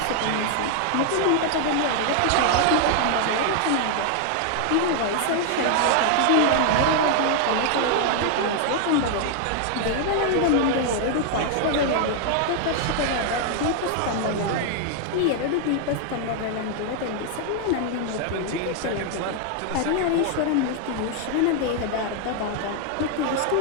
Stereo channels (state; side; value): different; both; correlation 0.00